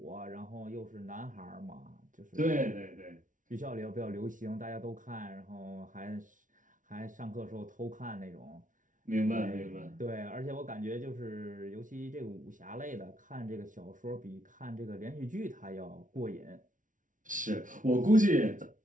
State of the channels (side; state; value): left; late; 0.38 ms